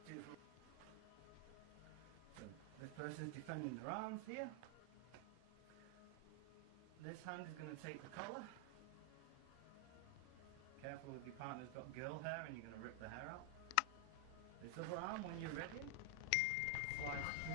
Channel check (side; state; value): both; different; correlation 0.00